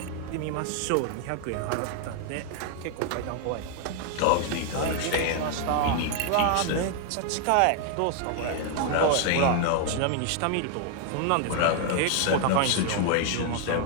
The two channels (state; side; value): different; both; correlation 0.00